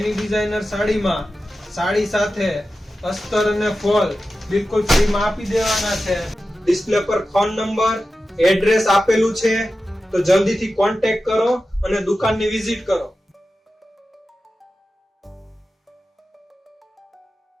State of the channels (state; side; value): normal; both; correlation 0.93